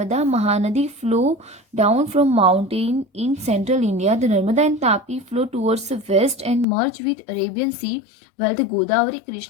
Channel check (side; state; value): right; drops out; at 6.7 s